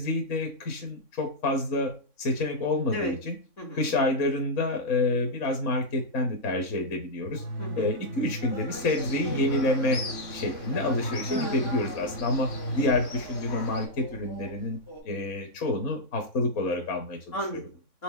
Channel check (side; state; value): right; late; 3.6 ms